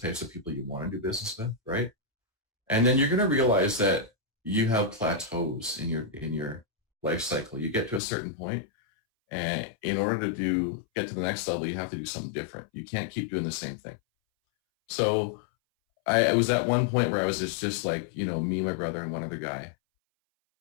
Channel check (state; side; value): drops out; right; at 8.0 s